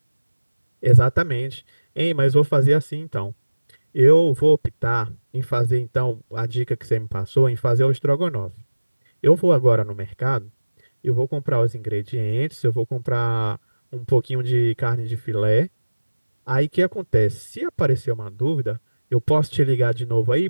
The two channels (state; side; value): inverted; both; correlation -1.00